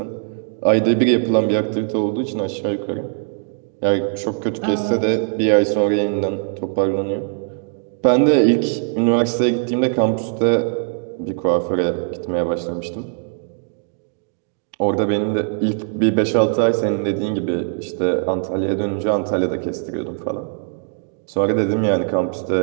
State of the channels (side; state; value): left; silent; digital silence